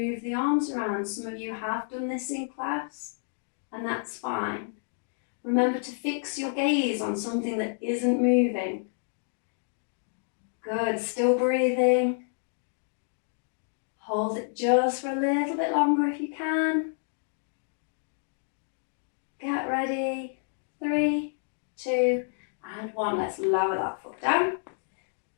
the arms around. Some of you have done this in class, and that's fine. Remember to fix your gaze on something that isn't moving. Good, still breathing. Hold it just for a little bit longer if you can. Get ready. 3, 2, and 1. Let's lower that foot down.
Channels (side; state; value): right; silent; digital silence